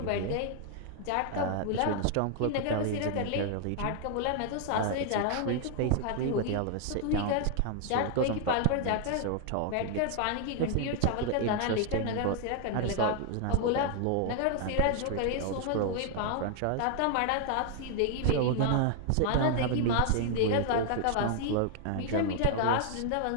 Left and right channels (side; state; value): both; different; correlation 0.00